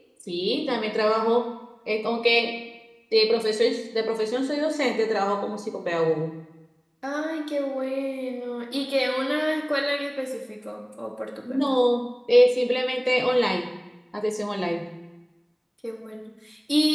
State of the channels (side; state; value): both; identical; correlation 1.00